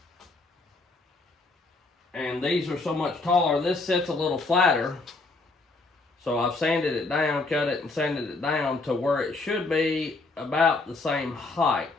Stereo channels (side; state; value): right; quieter; 3.4 dB